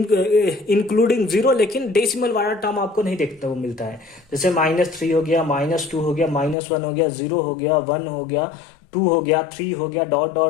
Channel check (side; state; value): right; drops out; at 6.6 s